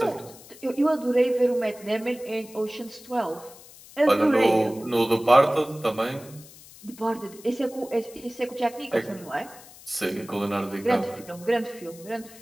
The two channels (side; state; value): left; noise; hiss, 20 dB below the sound